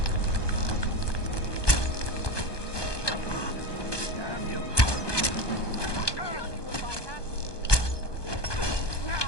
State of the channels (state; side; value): late; right; 1.2 ms